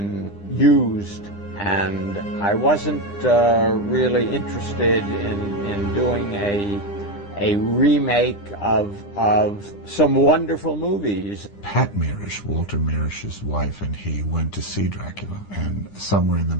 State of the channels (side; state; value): right; late; 9.9 ms